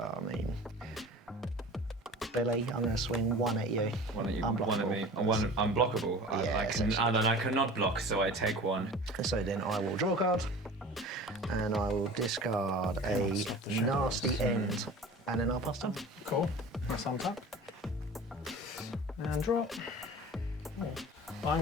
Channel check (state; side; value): normal; both; correlation 0.40